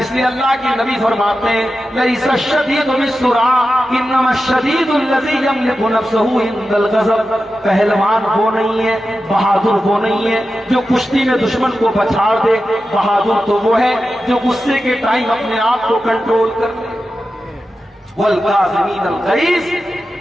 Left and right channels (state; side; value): normal; both; correlation 0.92